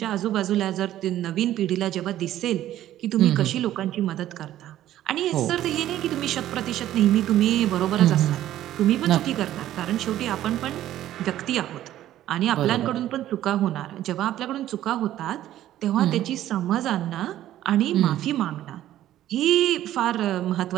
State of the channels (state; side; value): quieter; left; 13.0 dB